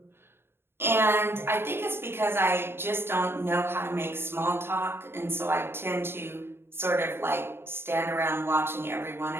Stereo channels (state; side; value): late; left; 0.11 ms